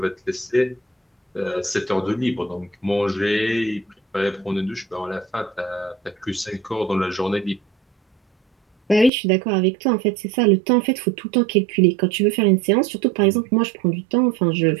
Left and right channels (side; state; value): left; drops out; at 9.1 s